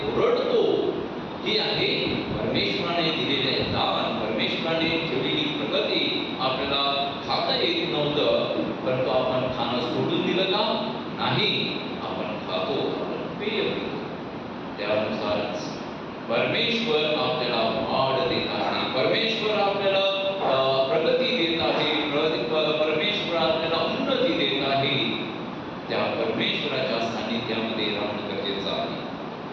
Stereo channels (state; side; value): identical; both; correlation 1.00